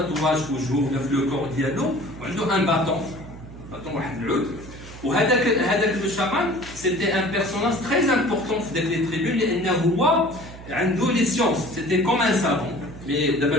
في وجهه ولا في لو كور ديالو وعنده ان باطون واحد العود. وهذاك لو شامان سيتي ان بيرسوناج تري امبورطون في داك لي تريبون لانه هو عنده لي سيونس سيتي كوم ان سافون. مي دابا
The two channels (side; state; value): right; noise; hum, 15 dB below the sound